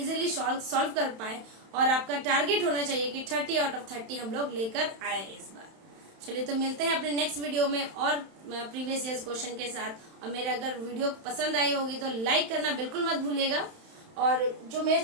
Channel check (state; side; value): late; left; 31 ms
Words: सॉल्व कर पाए। और आपका टारगेट होना चाहिए कि 30 आउट ऑफ 30 हम लोग लेकर आए इस बार। चलिए, तो मिलते हैं अपने नेक्स्ट वीडियो में और प्रीवियस ईयर्स क्वेश्चन के साथ। और मेरे अगर वीडियो पसंद आई होगी तो लाइक करना बिल्कुल मत भूलिएगा, और जो मेरे